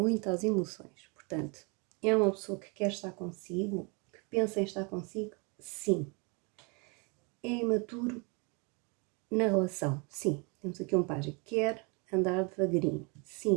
às emoções, portanto, é uma pessoa que quer estar consigo, que pensa em estar consigo, sim. É imaturo na relação, sim. Temos aqui um pajem. Quer andar devagarinho,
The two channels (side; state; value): left; quieter; 32.5 dB